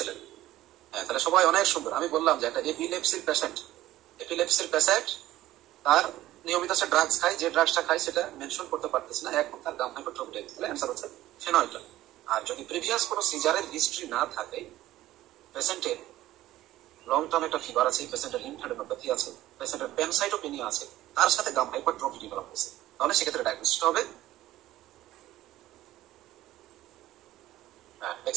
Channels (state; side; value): quieter; left; 15.0 dB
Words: হ্যাঁ, তাহলে সবাই অনেক সুন্দর। আমি বললাম যে একটা এপিলেপসির পেশেন্ট তার নিয়মিত সে ড্রাগস খায়, যে ড্রাগসটা খায় সেটা মেনশন করতে পারতেছে না, এখন তার গাম হাইপারট্রফি, তাহলে অ্যান্সার হচ্ছে ফেনয়টন। আর যদি প্রিভিয়াস কোনো সিজারের হিস্ট্রি না থাকে, পেশেন্টের লং টার্ম একটা ফিভার আছে, পেশেন্টের লিম্ফ্যাডেনোপ্যাথি আছে, পেশেন্টের প্যানসাইটোপেনিয়া আছে, তার সাথে গাম হাইপারট্রফি ডেভেলপ হয়েছে, তাহলে সেক্ষেত্রে ডায়াগনোসিসটা হবে। হ্যাঁ,